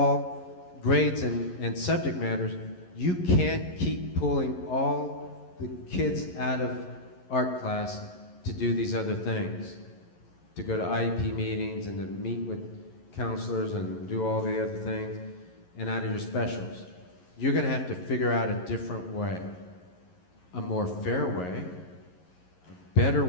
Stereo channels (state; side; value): late; right; 11 ms